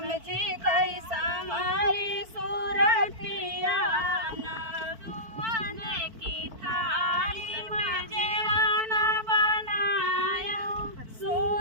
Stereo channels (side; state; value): left; late; 4.5 ms